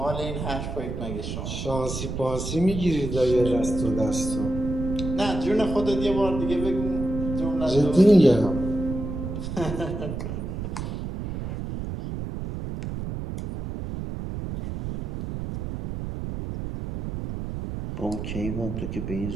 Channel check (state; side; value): noise; right; rumble, 5 dB below the sound